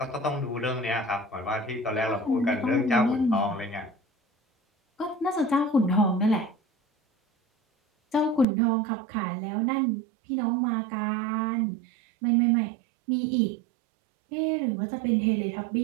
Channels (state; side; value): drops out; left; at 8.5 s